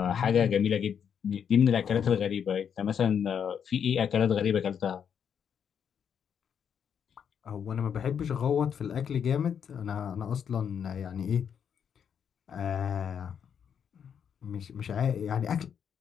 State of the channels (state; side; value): quieter; right; 7.8 dB